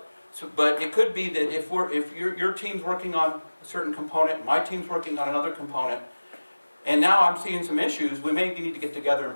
But it could be that if your team's working on a certain component, my team's working on another component, and now I'm seeing some issues, we may need to get together and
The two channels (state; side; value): inverted; both; correlation -1.00